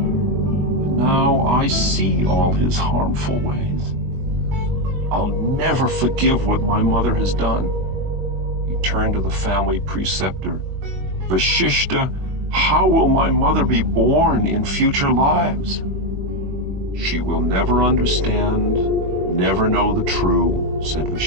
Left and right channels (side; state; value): left; late; 21 ms